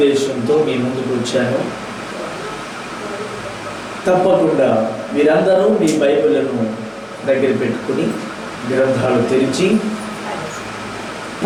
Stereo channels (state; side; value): identical; both; correlation 1.00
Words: మీ ముందుకు వచ్చాను. తప్పకుండా మీరందరూ మీ బైబిళ్లను దగ్గర పెట్టుకుని గ్రంథాలు తెరిచి